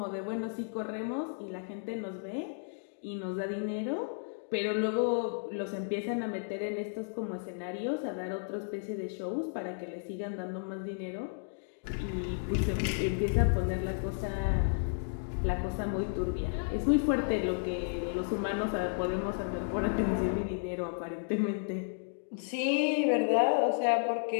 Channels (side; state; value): right; silent; digital silence